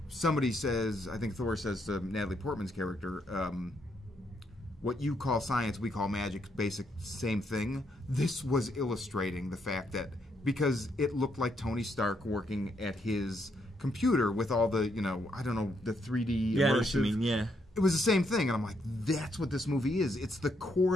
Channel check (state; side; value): normal; both; correlation 0.76